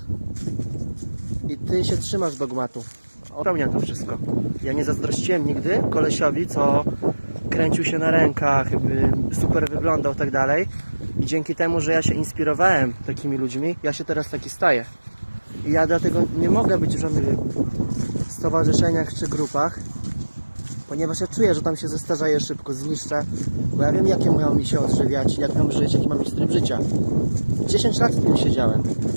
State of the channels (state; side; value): inverted; both; correlation -1.00